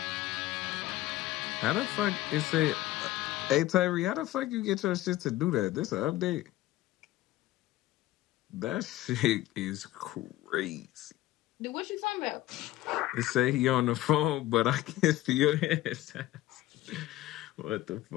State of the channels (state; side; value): quieter; right; 15.9 dB